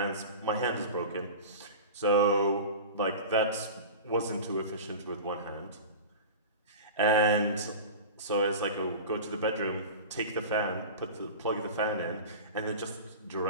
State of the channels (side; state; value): both; inverted; correlation -0.32